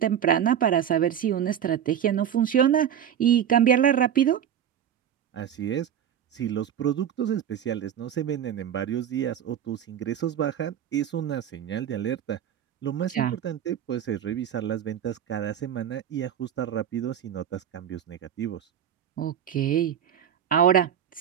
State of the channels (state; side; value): quieter; left; 9.4 dB